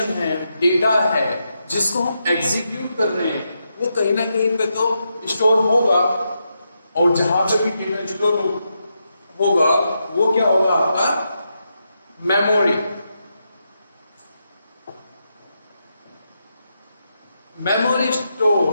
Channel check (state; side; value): inverted; both; correlation -0.84